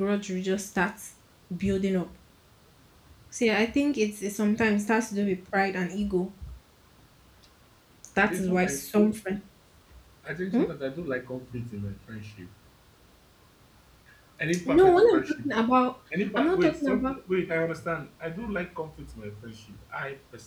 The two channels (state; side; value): identical; both; correlation 1.00